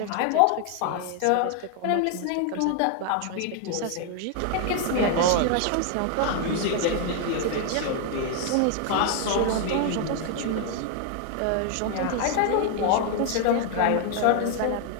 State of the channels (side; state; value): both; different; correlation 0.00